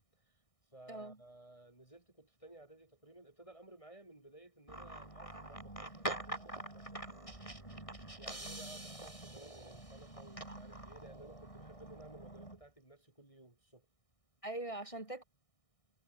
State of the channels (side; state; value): right; late; 1.6 ms